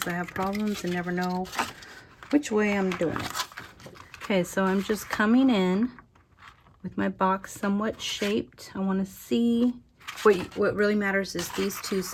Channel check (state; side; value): identical; both; correlation 1.00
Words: I have problems and never know which way I'm doing it. Okay, so I'm just coming in with my box somewhat shaped. I want to see what really matters is these two